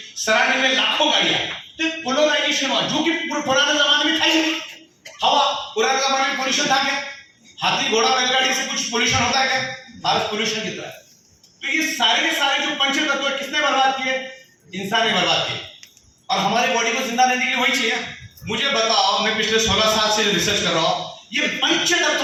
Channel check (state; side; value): identical; both; correlation 1.00